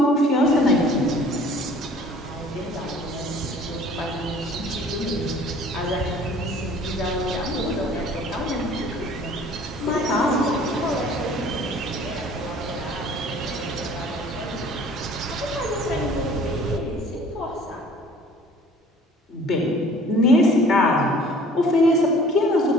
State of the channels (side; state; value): both; normal; correlation 0.51